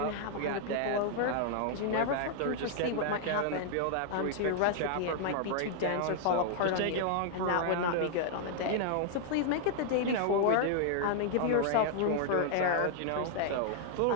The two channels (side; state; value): both; different; correlation 0.00